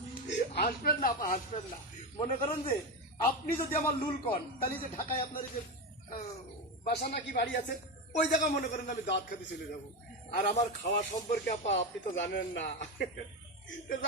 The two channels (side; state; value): both; normal; correlation 0.16